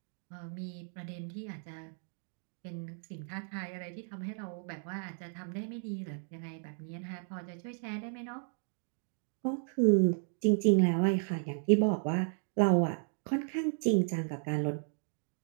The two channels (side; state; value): left; silent; 55 dB below the other